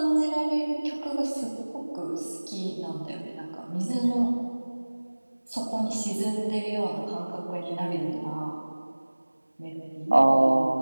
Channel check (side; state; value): both; inverted; correlation -1.00